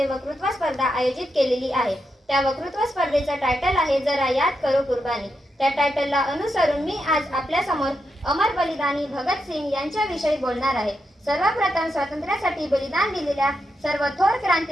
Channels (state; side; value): normal; both; correlation 0.85